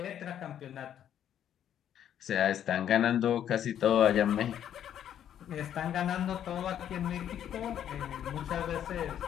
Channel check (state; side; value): quieter; right; 10.1 dB